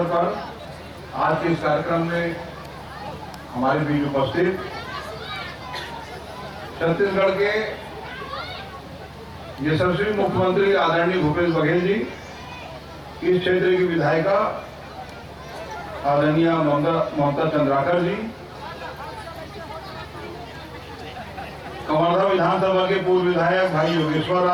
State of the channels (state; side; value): identical; both; correlation 1.00